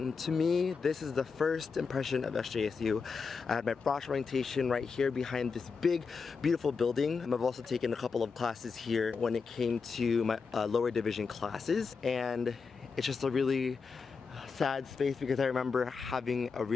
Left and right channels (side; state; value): right; quieter; 5.1 dB